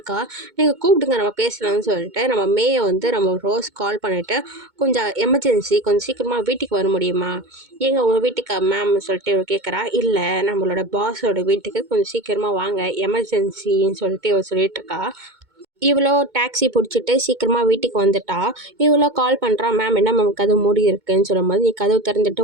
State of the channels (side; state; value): left; late; 2.2 ms